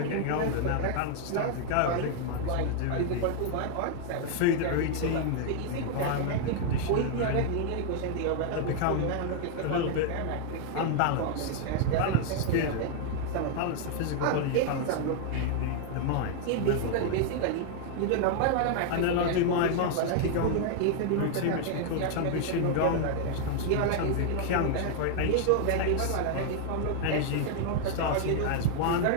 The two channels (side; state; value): both; different; correlation 0.00